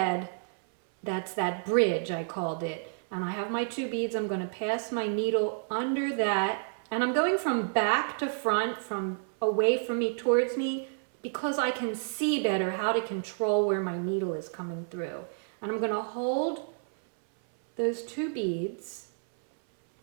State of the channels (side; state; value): left; silent; 58 dB below the other